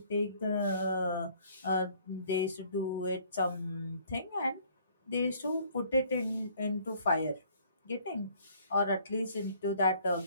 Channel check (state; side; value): inverted; both; correlation -0.58